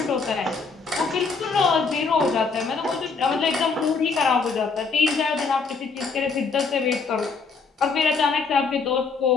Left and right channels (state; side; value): quieter; right; 4.7 dB